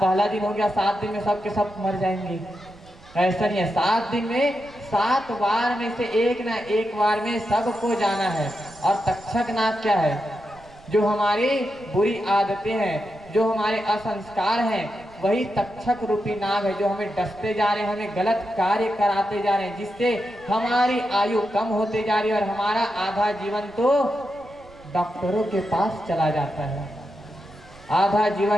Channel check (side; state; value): right; noise; rumble, 24 dB below the sound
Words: दिन हो गया, 7 दिन में सब के सब मर जाएंगे। ऐसा नहीं है। 7 दिन में 7 बार में से एक ना एक बार में सबको जाना है। और तक्षक नाग क्या है? जो हमारी बुरी आदतें हैं, जो हमारे असंस्कार हैं, वही तक्षक रूपी नाग है, जो हमें डसते जा रहे हैं, हमें गलत कार्य कराते जा रहे हैं, जिससे हमारी आयु कम होते जा रही है और हमारा आधा जीवन तो डॉक्टरों के पास चला जाता है, आधा